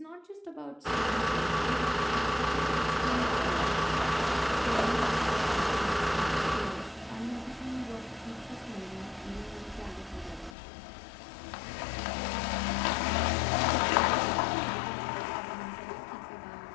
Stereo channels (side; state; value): right; drops out; at 10.6 s